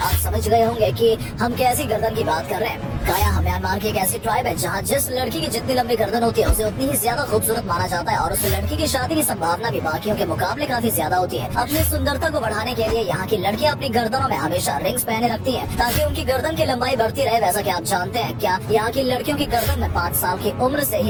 समझ गए होंगे कि हम कैसी गर्दन की बात कर रहे हैं। काया म्यांमार की एक ऐसी ट्राइब है जहाँ जिस लड़की की जितनी लंबी गर्दन होती है उसे उतनी ही ज्यादा खूबसूरत माना जाता है और उस लड़की की शादी की संभावना भी बाकियों के मुकाबले काफी ज्यादा होती है। अपनी सुंदरता को बढ़ाने के लिए यहाँ की लड़कियाँ अपनी गर्दनों में हमेशा रिंग्स पहने रखती हैं ताकि उनकी गर्दन की लंबाई बढ़ती रहे। वैसा क्या आप जानते हैं क्या यहाँ की लड़कियों की गर्दन में 5 साल की उम्र से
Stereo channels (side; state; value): both; identical; correlation 1.00